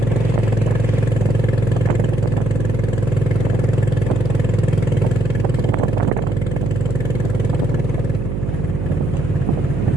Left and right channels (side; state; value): right; noise; hum, 3 dB below the sound